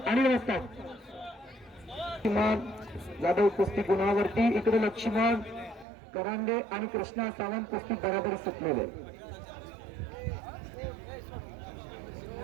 आणि व्यवस्था. जाधव कुस्ती गुणावरती. इकडे लक्ष्मण करांडे आणि कृष्णा सावंत कुस्ती बराबर सुटलेले.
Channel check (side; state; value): left; drops out; at 5.9 s